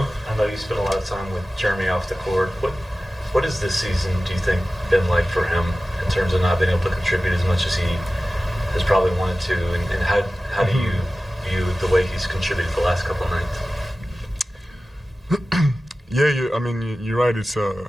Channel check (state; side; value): normal; both; correlation 0.96